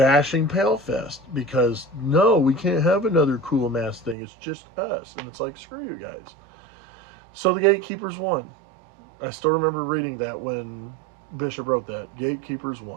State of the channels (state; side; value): drops out; left; at 4.2 s